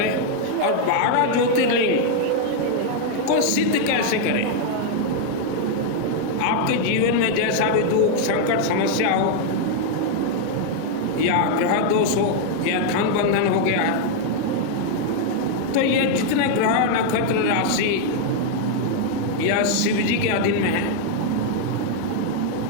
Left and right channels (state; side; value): different; both; correlation 0.00